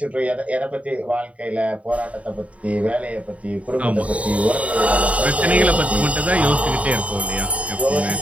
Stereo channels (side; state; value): left; late; 0.066 ms